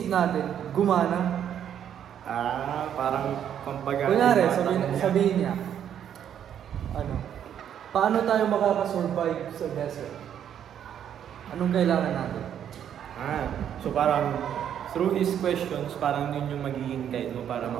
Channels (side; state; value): left; quieter; 9.5 dB